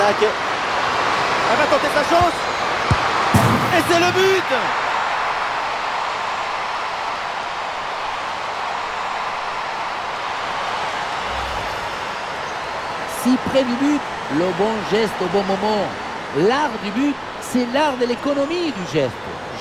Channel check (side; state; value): both; identical; correlation 1.00